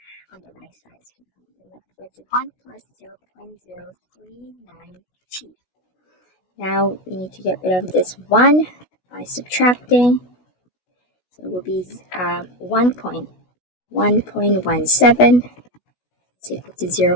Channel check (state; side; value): late; right; 16 ms